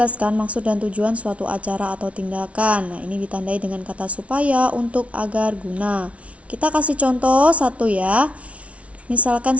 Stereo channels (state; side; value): late; left; 0.063 ms